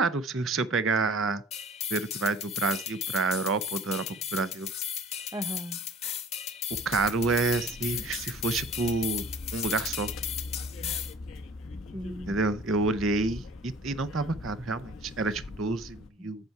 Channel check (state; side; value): normal; both; correlation 0.46